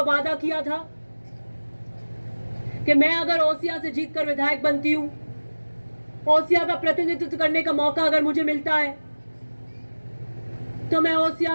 वादा किया था कि मैं अगर ओसिया से जीतकर विधायक बनती हूँ, ओसिया का प्रतिनिधित्व करने का मौका अगर मुझे मिलता है, तो मैं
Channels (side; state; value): both; inverted; correlation -1.00